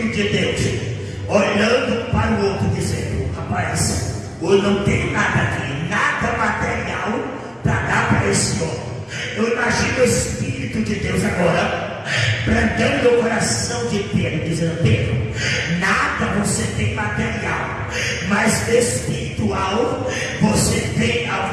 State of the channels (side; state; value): both; identical; correlation 1.00